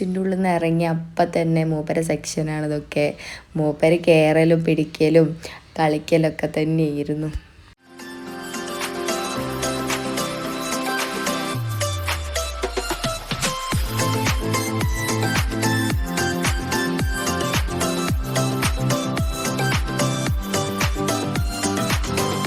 ഉള്ളിൽ നിന്ന് ഇറങ്ങി അപ്പം തന്നെ മൂപ്പരെ സെക്ഷനാണ് ഇതൊക്കെ. മൂപ്പര് കയറലും പിടിക്കലും കളിക്കലൊക്കെ തന്നെയായിരുന്നു.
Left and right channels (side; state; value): both; identical; correlation 1.00